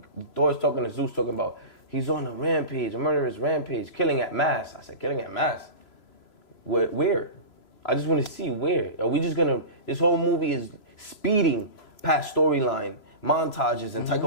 Thor's talking to Zeus, talking about he's on a rampage, a murderous rampage, killing at mass. I said, killing at mass. Where? I just want to see where. Are we just gonna? This whole movie is speeding past storyline, montages, and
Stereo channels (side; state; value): right; late; 3.0 ms